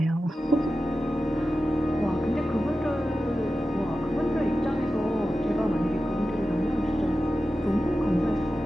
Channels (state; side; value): normal; both; correlation 0.93